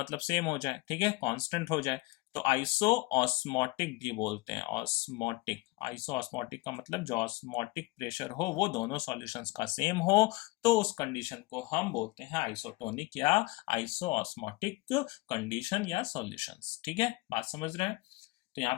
सेम हो जाए, ठीक है, कांस्टेंट हो जाए, तो आइसो ऑस्मोटिक भी बोलते हैं। ऑस्मोटिक, आइसो ऑस्मोटिक का मतलब जो ऑस्मोटिक प्रेशर हो वो दोनों सॉल्यूशंस का सेम हो, तो उस कंडीशन को हम बोलते हैं आइसोटोनिक या आइसो ऑस्मोटिक कंडीशन या सॉल्यूशंस। ठीक है, बात समझ रहे हैं? तो यहाँ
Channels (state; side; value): quieter; right; 22.1 dB